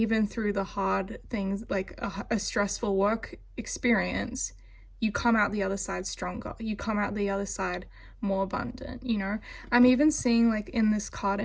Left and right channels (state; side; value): identical; both; correlation 1.00